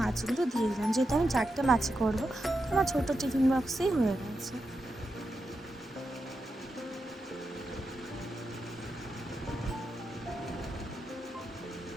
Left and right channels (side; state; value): both; normal; correlation 0.87